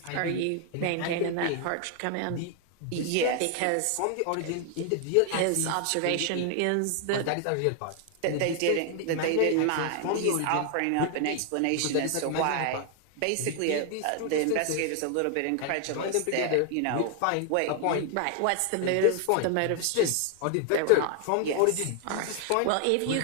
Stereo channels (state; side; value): different; both; correlation 0.00